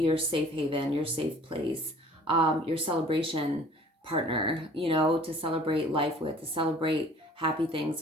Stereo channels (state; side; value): normal; both; correlation 0.51